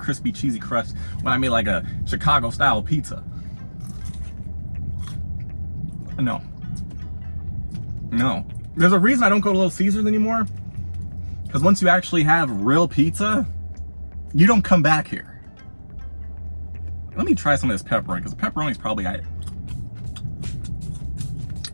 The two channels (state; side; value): inverted; both; correlation -1.00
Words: cheesy crust when I made like a Chicago style pizza. No. There's a reason I don't go to Little Caesars anymore. Because once you actually have real pizza, you don't come back here. Let me try some of this pepperoni, because the pepperoni's probably right.